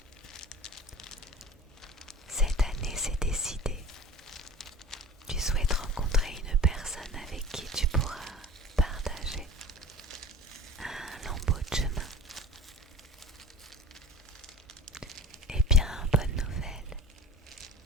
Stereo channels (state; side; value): normal; both; correlation 0.39